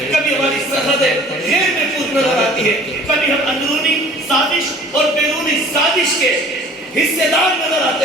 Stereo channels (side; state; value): both; normal; correlation 0.49